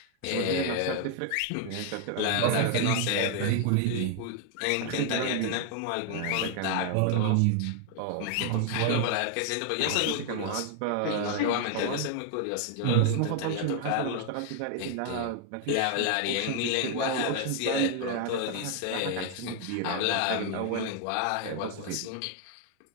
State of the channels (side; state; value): both; different; correlation 0.00